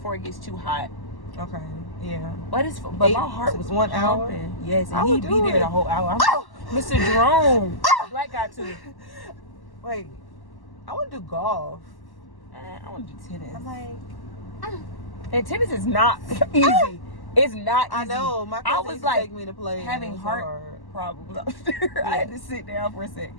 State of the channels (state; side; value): late; right; 1.1 ms